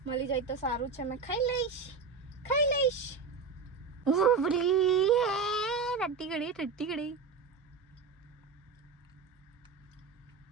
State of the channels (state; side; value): quieter; left; 4.9 dB